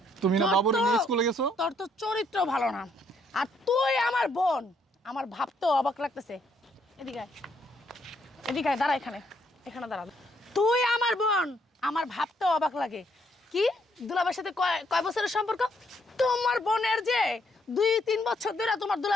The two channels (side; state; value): both; normal; correlation 0.71